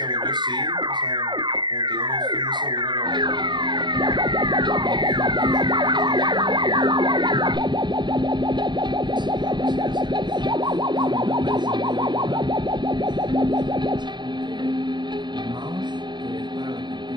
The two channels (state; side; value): late; left; 0.22 ms